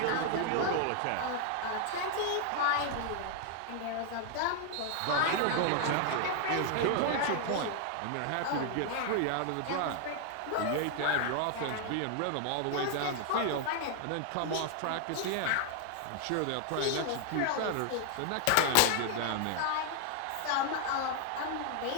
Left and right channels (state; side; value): different; both; correlation 0.00